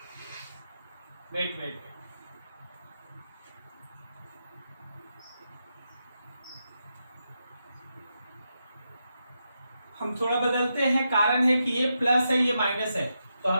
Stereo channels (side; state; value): both; inverted; correlation -0.85